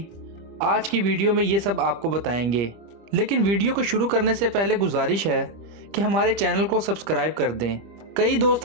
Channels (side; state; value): left; late; 25 ms